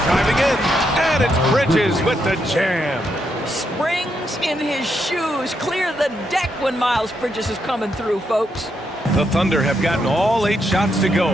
Diving in, and it's Bridges with the jam. Springs in his shoes. Clear the deck when Miles Bridges is coming through, folks. The Thunder have gotten all 8 shots to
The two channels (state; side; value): normal; both; correlation 0.80